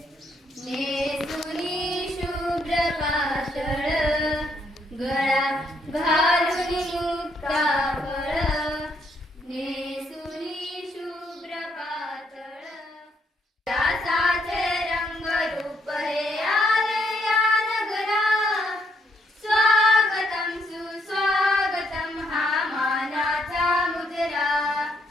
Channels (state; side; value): normal; both; correlation 0.74